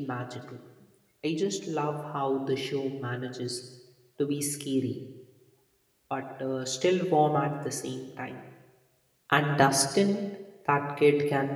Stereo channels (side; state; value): both; identical; correlation 1.00